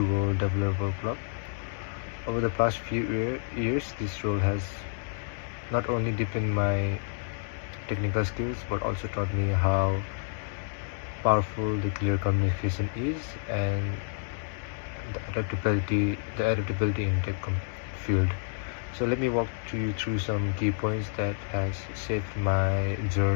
Developer Club. Over the past few years, this role has not only deepened my technical skills but also taught me how powerful the clear communication is and the adaptability in field. So let me walk you through some key points that has shaped my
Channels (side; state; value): right; silent; 58 dB below the other